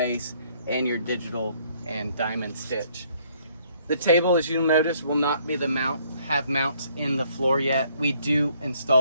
and your digital and diamond stitch. The table, as you'll notice, will not be have mounts in the floor yet. We do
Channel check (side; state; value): both; inverted; correlation -0.65